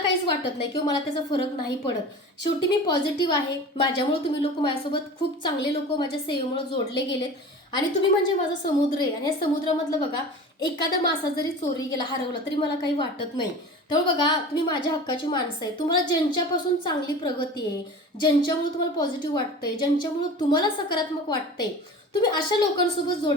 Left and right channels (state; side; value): normal; both; correlation 0.36